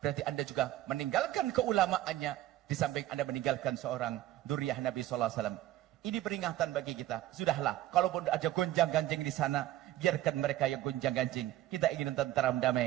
Berarti Anda juga meninggalkan keulamaannya, di samping Anda meninggalkan seorang dzurriyyah Nabi SAW. Ini peringatan bagi kita. Sudahlah, kalaupun ada gonjang-ganjing di sana, biarkan mereka yang gonjang-ganjing. Kita ingin tentram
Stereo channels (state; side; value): quieter; left; 14.3 dB